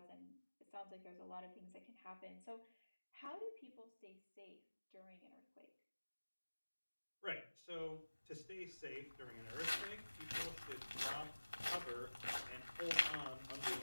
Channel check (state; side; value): inverted; both; correlation -1.00